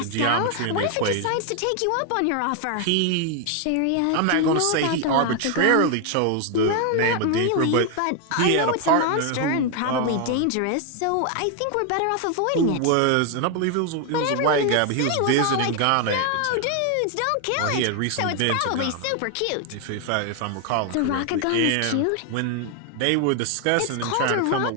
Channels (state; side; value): different; both; correlation 0.01